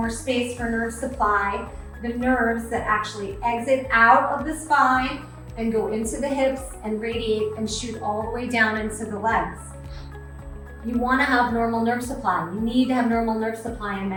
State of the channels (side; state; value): both; identical; correlation 1.00